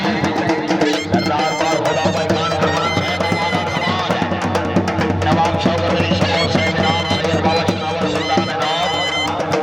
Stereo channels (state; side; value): identical; both; correlation 1.00